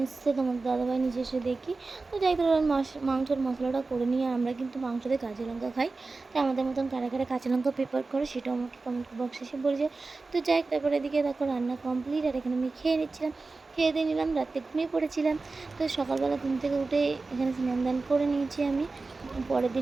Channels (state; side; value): quieter; left; 3.8 dB